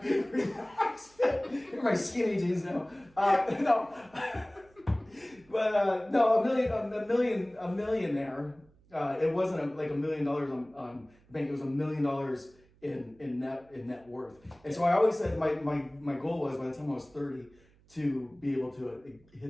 relaxed fit. They're my skinny jeans now. No. But no, a millionaire. It wasn't like $1 million on bank. It was $1 million in net worth. And so I always said my goal was, by the time I was 30, to be able to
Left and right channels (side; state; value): right; noise; hum, 30 dB below the sound